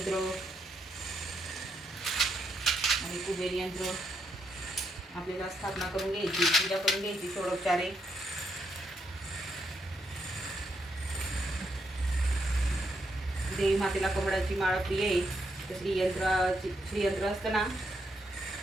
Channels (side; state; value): both; normal; correlation 0.79